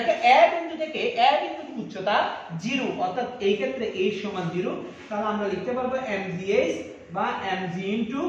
এ বিন্দু থেকে এ বিন্দুর উচ্চতা 0, অর্থাৎ এই ক্ষেত্রে h সমান 0, তাহলে আমরা লিখতে পারবো mgh বা mg ইনটু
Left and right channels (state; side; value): identical; both; correlation 1.00